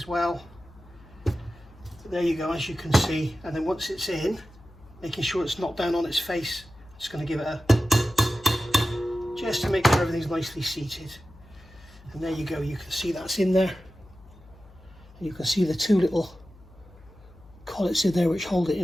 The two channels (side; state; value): left; noise; hum, 23 dB below the sound